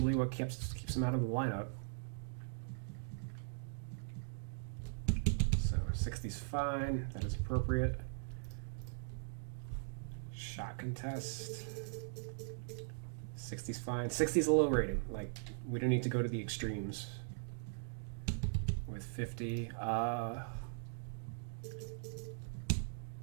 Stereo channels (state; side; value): silent; left; digital silence